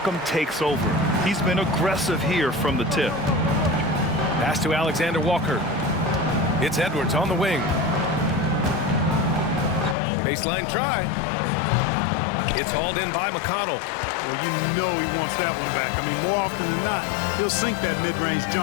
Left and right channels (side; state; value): right; drops out; at 10.0 s